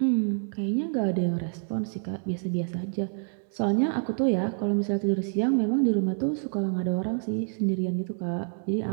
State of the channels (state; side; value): silent; left; 59 dB below the other